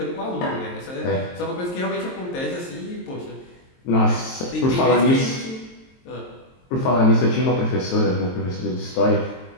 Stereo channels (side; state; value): right; late; 23 ms